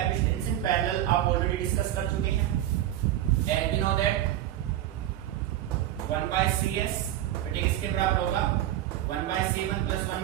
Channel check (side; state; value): left; quieter; 12.9 dB